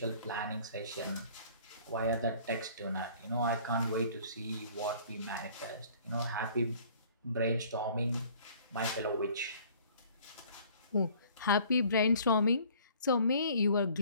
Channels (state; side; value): inverted; both; correlation -0.53